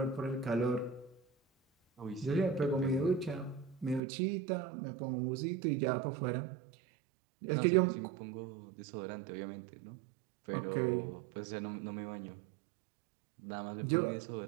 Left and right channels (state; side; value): drops out; left; at 4.0 s